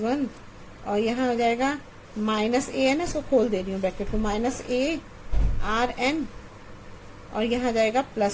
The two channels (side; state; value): both; identical; correlation 1.00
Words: और यहाँ हो जाएगा माइनस ए है ना, इसको खोल दे रही हूँ ब्रैकेट को, माइनस ए आर एन, और यहाँ जाएगा